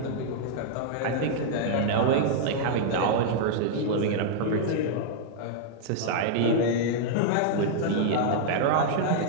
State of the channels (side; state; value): both; different; correlation -0.01